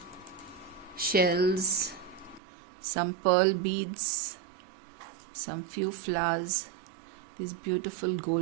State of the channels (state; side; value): drops out; left; at 2.4 s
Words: shells, some pearl beads, some few flowers. These beautiful